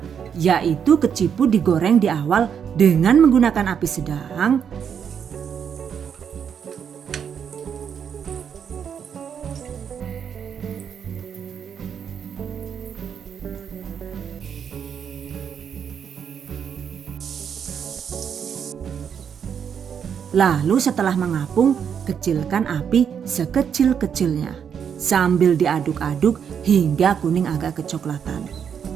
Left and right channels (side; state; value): left; quieter; 7.7 dB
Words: yaitu keciput digoreng di awal dengan menggunakan api sedang. Lalu setelah mengapung, kecilkan api sekecil-kecilnya. Sambil diaduk-aduk hingga kuning agak kecoklatan.